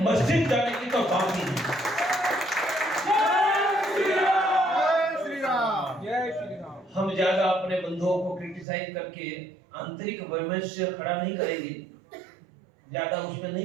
मस्जिद जाने की तो बात ही नहीं। हम ज्यादा अपने बंधुओं को क्रिटिसाइज करके आंतरिक वैमनस्य खड़ा नहीं करेंगे, ज्यादा उसमें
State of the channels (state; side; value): drops out; left; at 8.7 s